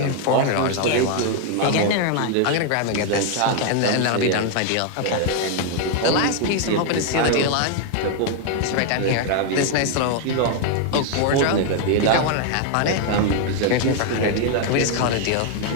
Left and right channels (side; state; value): both; different; correlation 0.00